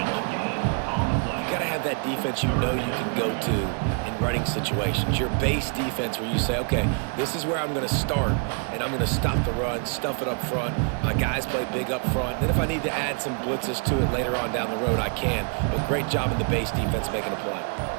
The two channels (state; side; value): quieter; left; 39.6 dB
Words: You got to have that defense you know you can go to in running situations. Your base defense where you say, okay, this is where I'm going to start, and I'm going to stop the run, stuff it up front. My guys play big up front. Then if I need to add some blitzes to it later on down the road, I can. But great job in the base defense making a play.